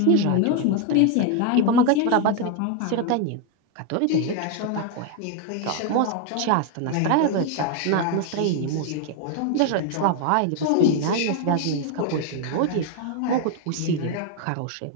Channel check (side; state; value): both; different; correlation 0.01